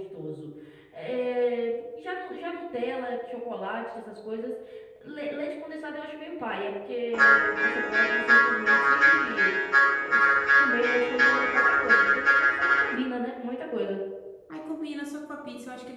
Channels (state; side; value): identical; both; correlation 1.00